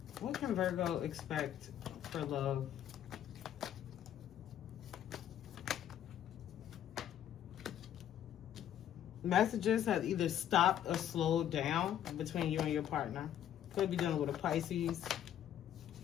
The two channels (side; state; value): right; quieter; 10.7 dB